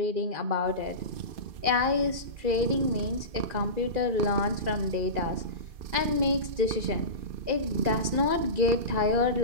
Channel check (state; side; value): late; left; 2.4 ms